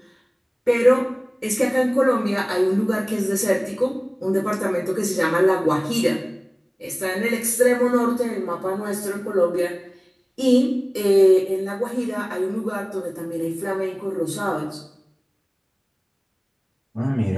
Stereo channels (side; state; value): both; identical; correlation 1.00